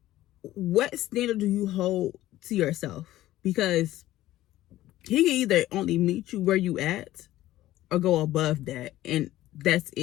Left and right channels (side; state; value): right; quieter; 15.1 dB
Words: what standard do you hold to yourself? Because he can either only meet you where you at or go above that, and that's